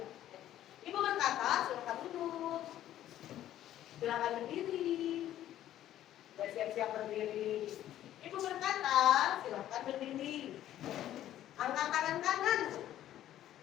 Ibu berkata, silakan duduk. Silakan berdiri. Sudah siap-siap berdiri. Ibu berkata, silakan berdiri. Angkat tangan kanan.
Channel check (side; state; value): right; quieter; 12.5 dB